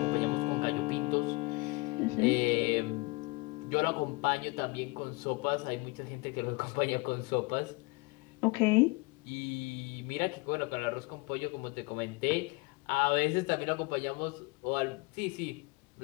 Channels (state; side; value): quieter; right; 26.0 dB